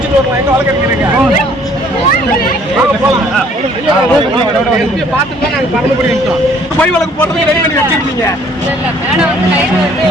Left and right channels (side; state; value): both; normal; correlation 0.59